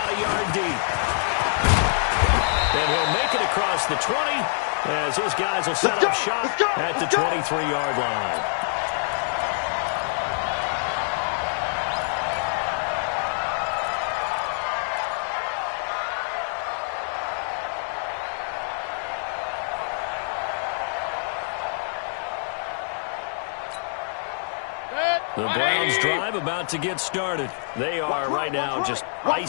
a yard deep. And he'll make it across the 20 as his guys will set up shop at the 23-yard line. The Browns drive about to get started. They are right now just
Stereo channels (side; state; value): right; silent; digital silence